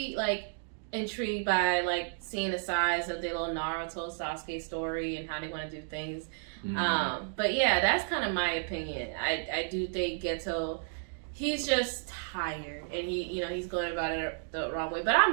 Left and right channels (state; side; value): silent; left; digital silence